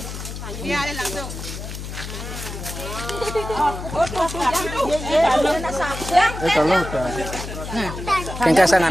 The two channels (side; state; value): left; noise; hum, 8 dB below the sound